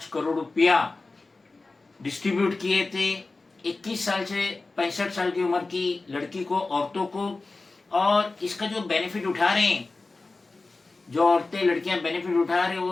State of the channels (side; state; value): right; quieter; 3.5 dB